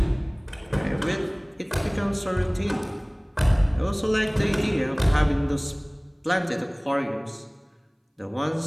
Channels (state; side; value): identical; both; correlation 1.00